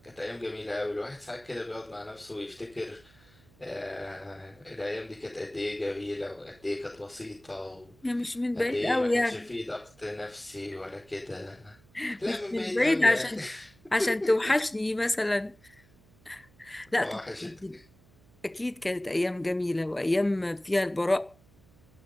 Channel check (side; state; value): right; noise; hum, 28 dB below the sound